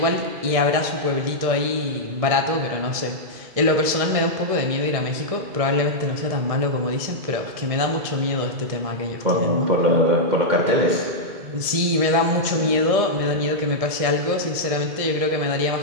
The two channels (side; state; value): left; late; 1.7 ms